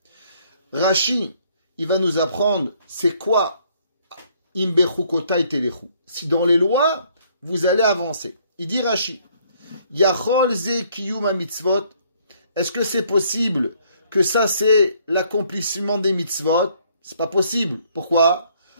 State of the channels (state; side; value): inverted; both; correlation -0.64